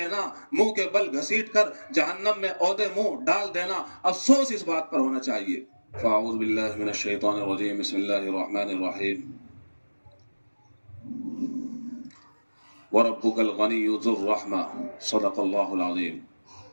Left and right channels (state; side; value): inverted; both; correlation -1.00